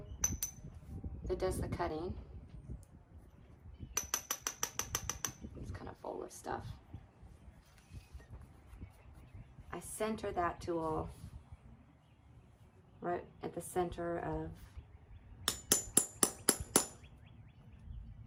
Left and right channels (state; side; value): identical; both; correlation 1.00